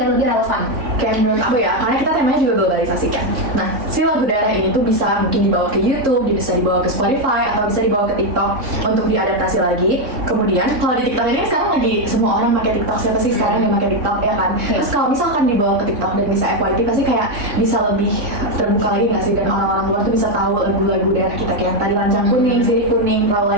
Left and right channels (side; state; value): left; late; 3.6 ms